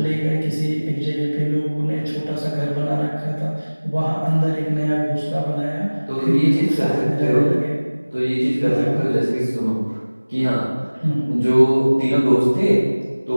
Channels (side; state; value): both; inverted; correlation -1.00